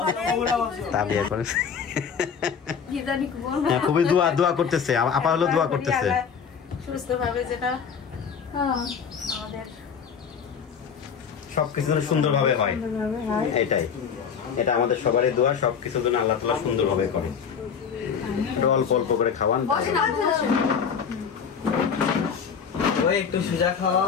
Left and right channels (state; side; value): quieter; right; 6.8 dB